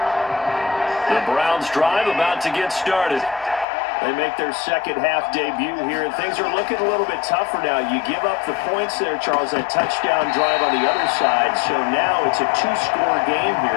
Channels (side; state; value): right; drops out; at 3.7 s